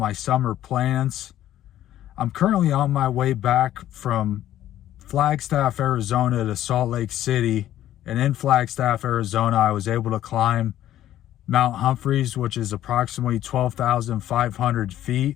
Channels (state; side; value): quieter; right; 12.6 dB